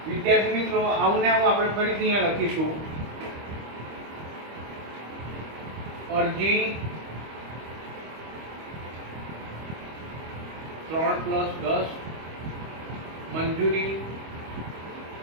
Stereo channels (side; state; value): left; late; 25 ms